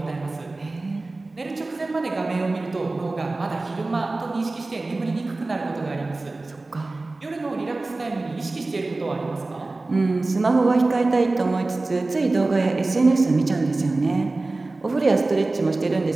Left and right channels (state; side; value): quieter; left; 3.2 dB